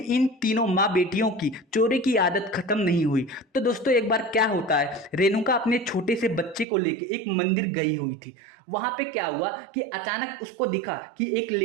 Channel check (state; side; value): drops out; left; at 6.7 s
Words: इन तीनों माँ बेटियों की चोरी की आदत खत्म नहीं हुई। तो दोस्तों एक बार क्या होता है, रेणुका अपने छोटे से बच्चे को लेके एक मंदिर गई हुई थी। वहां पे क्या हुआ कि अचानक उसको दिखा कि एक